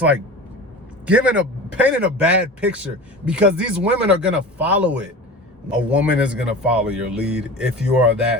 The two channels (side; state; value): both; normal; correlation 0.33